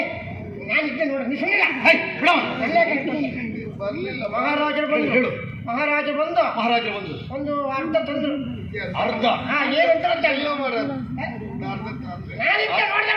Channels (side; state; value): both; identical; correlation 1.00